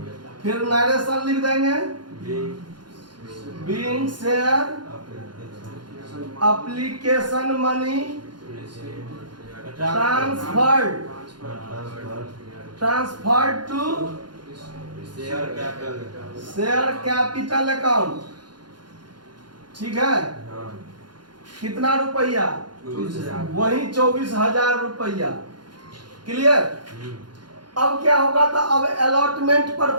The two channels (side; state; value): left; late; 0.71 ms